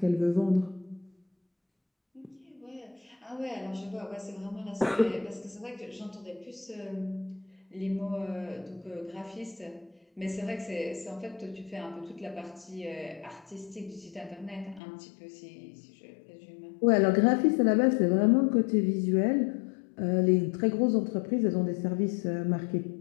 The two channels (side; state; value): right; drops out; at 14.8 s